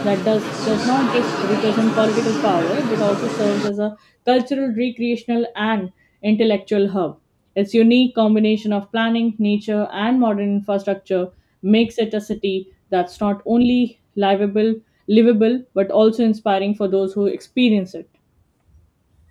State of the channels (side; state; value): both; identical; correlation 1.00